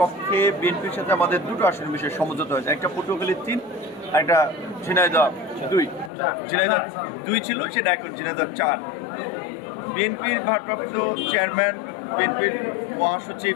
বিএনপির সাথে আমাদের দুটো আসনের বিষয়ে সমঝোতা হয়েছে। একটা পটুয়াখালী 3 আর একটা ঝিনাইদহ 2। ঝিনাইদহ 2 ছিল, সেটা এখন ঝিনাইদহ 4। বিএনপির ভারপ্রাপ্ত চেয়ারম্যান, বিএনপির মহাসচিব,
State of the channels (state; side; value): drops out; right; at 6.1 s